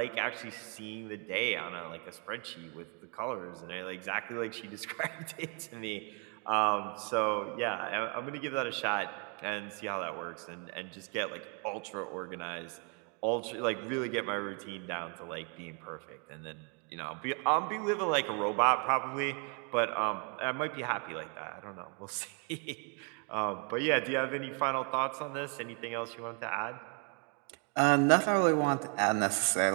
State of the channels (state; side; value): quieter; left; 37.5 dB